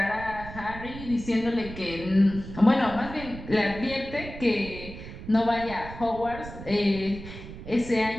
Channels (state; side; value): noise; right; rumble, 12 dB below the sound